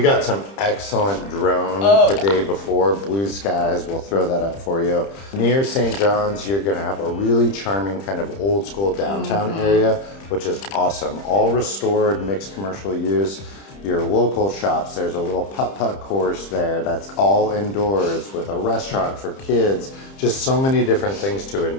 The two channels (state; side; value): late; right; 30 ms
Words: some excellent drone the day before, blue skies. We'll throw that up for you. Near St. John's, you're gonna have a really charming kind of old school downtown area, which is awesome. All restored, mixed commercial use. Your local shops, there's a little putt-putt course there that's all indoors with a restaurant for kids, just so many different things to